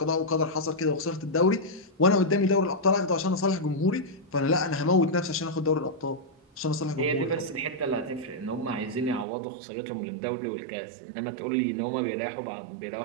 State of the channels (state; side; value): drops out; left; at 9.2 s